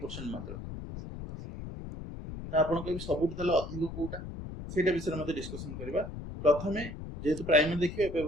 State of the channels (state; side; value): noise; left; rumble, 9 dB below the sound